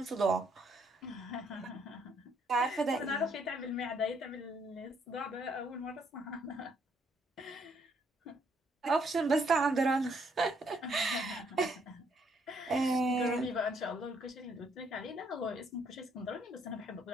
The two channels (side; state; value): both; normal; correlation 0.69